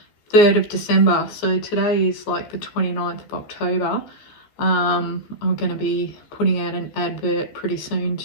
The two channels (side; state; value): right; late; 14 ms